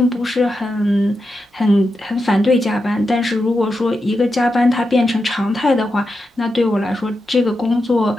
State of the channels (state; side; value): normal; both; correlation 0.88